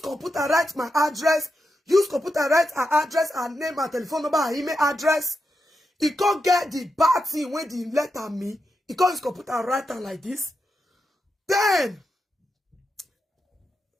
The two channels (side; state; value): both; normal; correlation 0.86